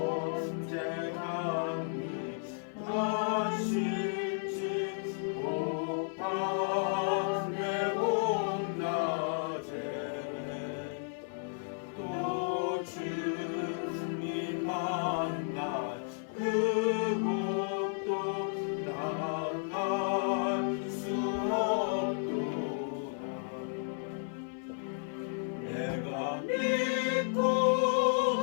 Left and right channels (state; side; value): silent; right; 56 dB below the other